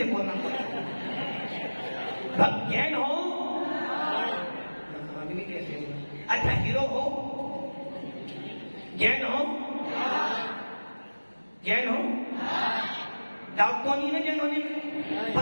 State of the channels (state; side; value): inverted; both; correlation -1.00